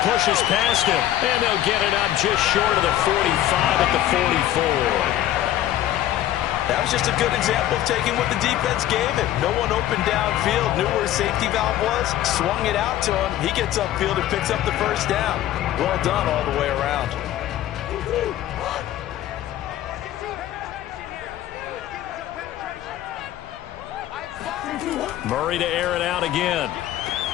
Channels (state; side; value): quieter; right; 13.0 dB